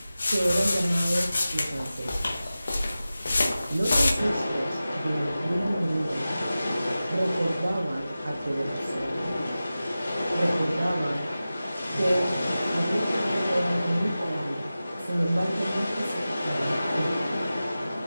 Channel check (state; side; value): inverted; both; correlation -0.95